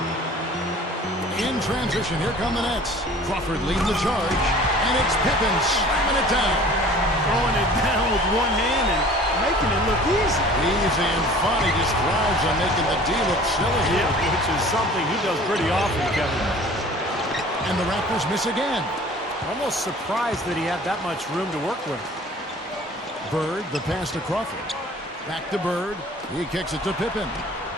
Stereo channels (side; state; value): both; normal; correlation 0.47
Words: In transition, here come the Nets. Crawford leads the charge. And it's Pippen slamming it down. Throwing it down with one hand and making it look easy. Easy and fun. He just thrives on making the D look silly. Yeah, which is something he does pretty often, Kevin. And the Raptors miss again. Almost surprised that he had that much room to work with. Bird, the pass to Crawford. Back to Bird. He kicks it to Pippen.